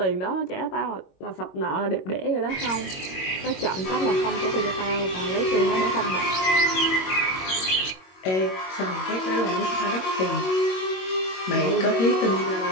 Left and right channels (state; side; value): late; right; 22 ms